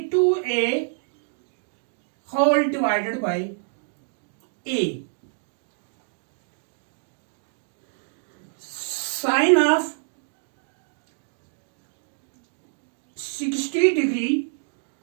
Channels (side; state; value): left; silent; digital silence